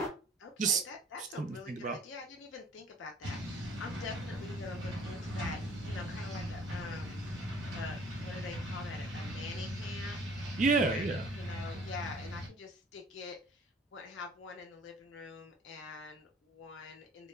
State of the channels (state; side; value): normal; both; correlation 0.53